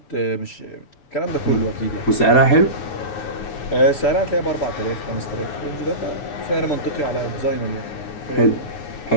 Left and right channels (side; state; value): right; late; 6.9 ms